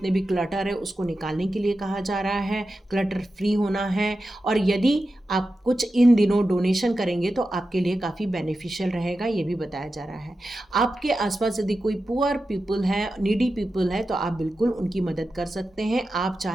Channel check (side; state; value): both; normal; correlation 0.92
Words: भी क्लटर है उसको निकालने के लिए कहा जा रहा है, क्लटर फ्री होना है। और यदि आप कुछ इन दिनों डोनेशन करेंगे तो आपके लिए काफ़ी बेनिफिशियल रहेगा, ये भी बताया जा रहा है। आपके आसपास यदि कोई पुअर पीपल है, नीडी पीपल है, तो आप बिल्कुल उनकी मदद कर सकते हैं। आप